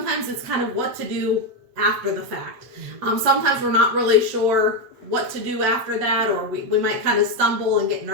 it's kind of what to do after the fact. Sometimes we're not really sure what to do after that, or we might kind of stumble and get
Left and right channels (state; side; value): late; left; 8.3 ms